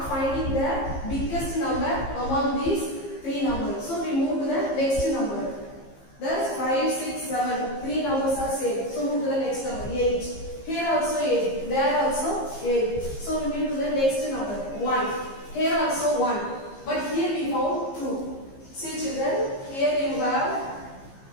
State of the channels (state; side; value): late; right; 15 ms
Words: finding the biggest number among these 3 numbers. So we move to the next number. Thus 5, 6, 7. 3 numbers are same. So move to the next number. 8. Here also 8. There also 8. So we move to the next number. 1. Here also 1. But here we found 2. See children, here you have